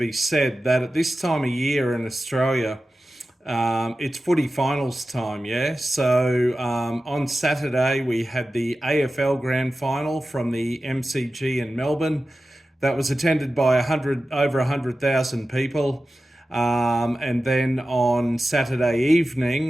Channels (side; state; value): both; normal; correlation 0.94